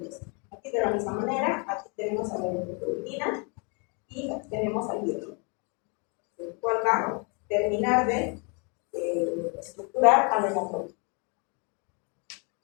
Aquí de la misma manera, aquí tenemos a la eritropoietina y aquí tenemos al hierro, el cual va a terminar de estructurar a la hemoglobina.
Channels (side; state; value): right; quieter; 34.6 dB